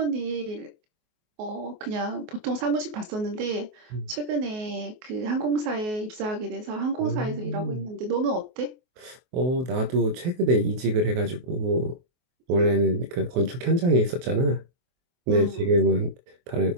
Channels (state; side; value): late; left; 23 ms